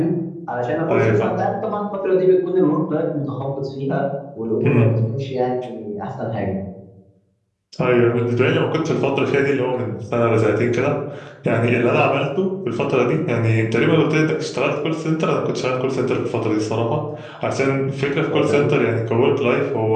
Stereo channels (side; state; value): both; identical; correlation 1.00